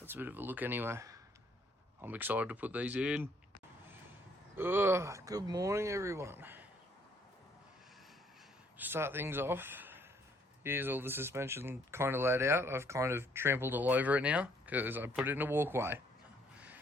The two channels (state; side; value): normal; both; correlation 0.66